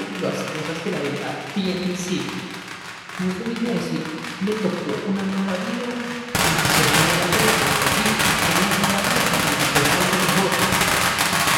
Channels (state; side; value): identical; both; correlation 1.00